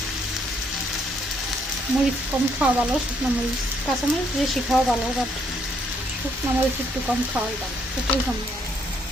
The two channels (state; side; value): normal; both; correlation 0.70